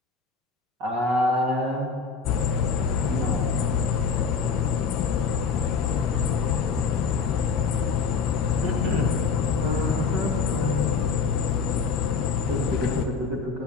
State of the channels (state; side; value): quieter; right; 5.2 dB